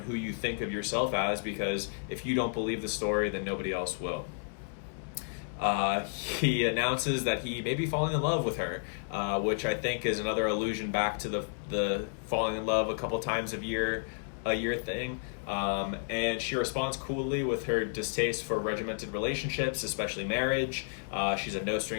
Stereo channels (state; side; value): silent; right; 57 dB below the other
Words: who you think of yourself as, because if you don't believe the story, then nobody else will. He announces that he may be falling in love with her, which I think is another allusion back to the falling in love a couple times a year thing. And she responds coolly with her distaste for regimented relationships, especially marriage. She's a no